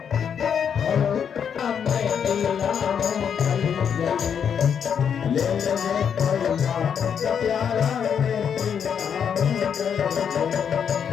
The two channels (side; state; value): right; quieter; 7.7 dB